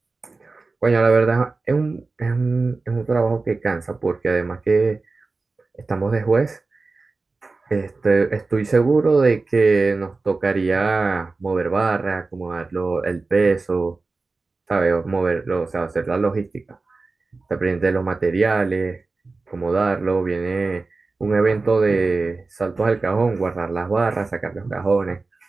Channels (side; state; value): left; quieter; 3.7 dB